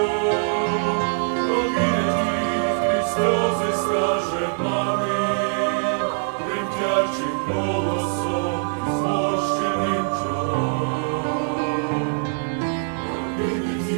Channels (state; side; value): silent; left; digital silence